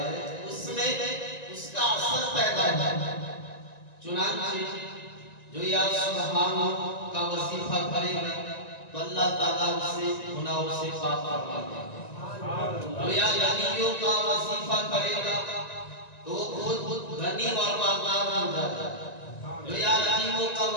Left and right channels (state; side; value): late; right; 1.9 ms